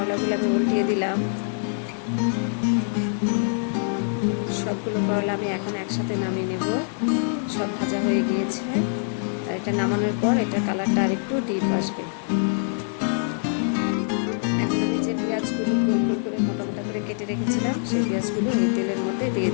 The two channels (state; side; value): silent; right; digital silence